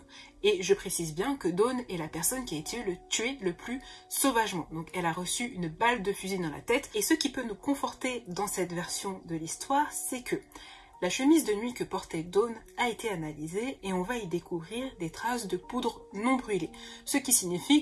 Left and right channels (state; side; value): identical; both; correlation 1.00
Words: Et je précise bien que Dawn est la personne qui a été tuée le plus sauvagement. Donc elle a reçu une balle de fusil dans la tête. Et ce qui peut nous conforter dans cette version de l'histoire, c'est que la chemise de nuit que portait Dawn a été analysée et on va y découvrir des traces de poudre non brûlée. Ce qui